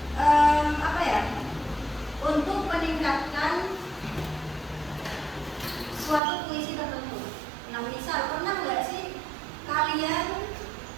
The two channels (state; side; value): drops out; left; at 6.2 s